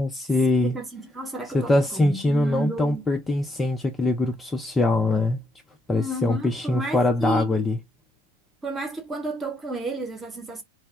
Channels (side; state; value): both; normal; correlation 0.78